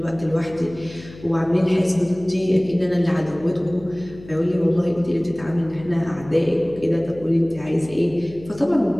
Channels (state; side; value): noise; left; hum, 18 dB below the sound